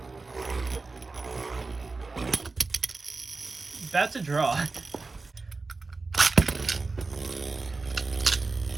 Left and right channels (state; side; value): quieter; left; 3.8 dB